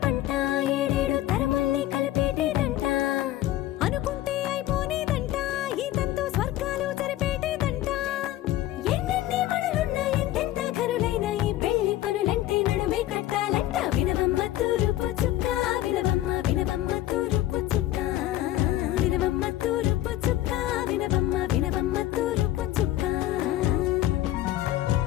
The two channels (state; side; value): quieter; right; 14.5 dB